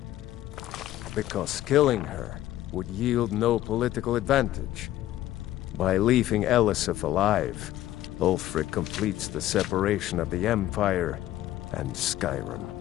Because killing her would yield no political advantage. By leaving Elisif alive, Ulfric completes the separation of the Empire and Skyrim.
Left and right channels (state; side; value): quieter; right; 13.9 dB